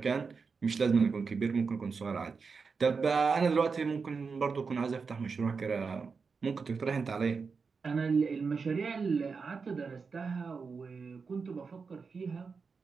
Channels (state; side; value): quieter; left; 5.1 dB